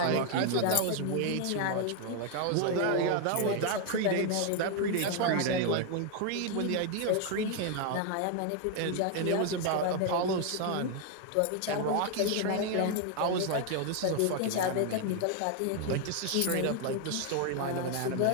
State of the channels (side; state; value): both; different; correlation 0.01